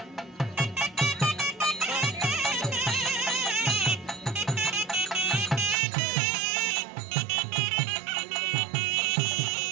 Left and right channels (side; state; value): left; drops out; at 5.8 s